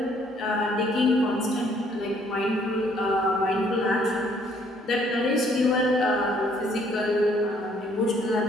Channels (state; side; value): normal; both; correlation 0.64